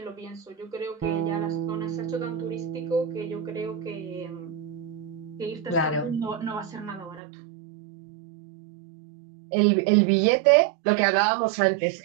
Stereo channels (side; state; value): left; drops out; at 7.2 s